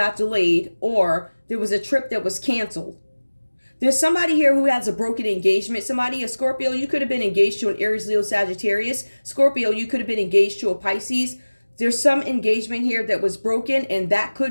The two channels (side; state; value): both; inverted; correlation -1.00